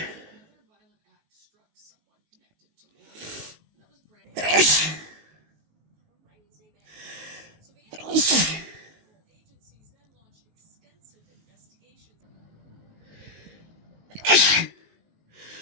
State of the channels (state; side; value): late; left; 19 ms